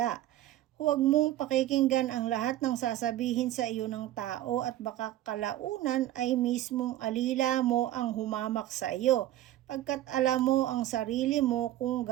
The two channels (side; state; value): left; quieter; 13.9 dB